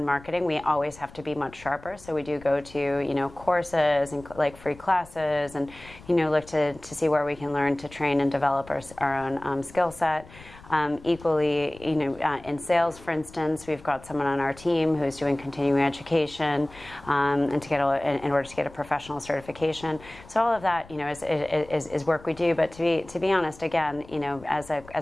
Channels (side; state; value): left; noise; rumble, 21 dB below the sound